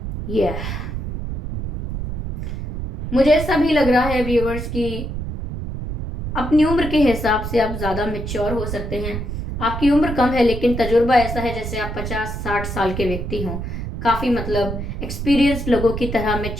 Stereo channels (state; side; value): noise; right; rumble, 5 dB below the sound